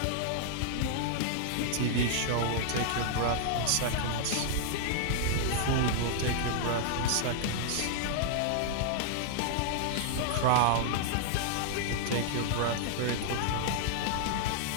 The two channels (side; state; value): both; different; correlation -0.01